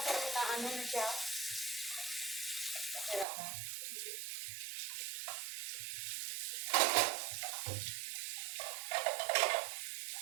na ano na siya? Sira na.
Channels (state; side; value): drops out; left; at 3.2 s